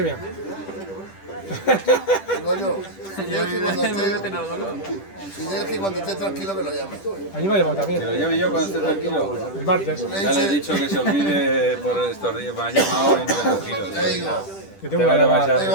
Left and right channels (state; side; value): late; right; 10 ms